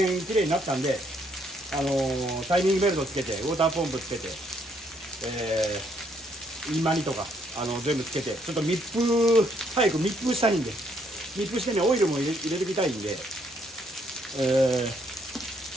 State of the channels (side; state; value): both; normal; correlation 0.70